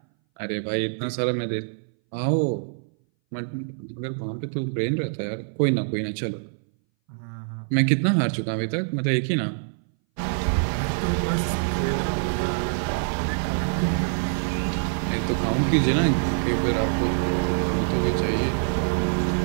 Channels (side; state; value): left; silent; 60 dB below the other